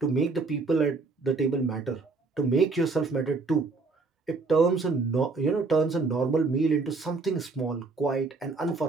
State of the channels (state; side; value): quieter; left; 4.0 dB